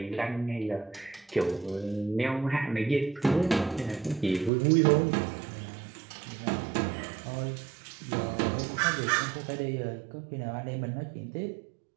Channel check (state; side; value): drops out; left; at 4.5 s